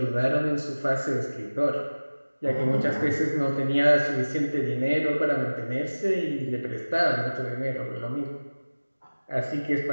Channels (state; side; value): inverted; both; correlation -1.00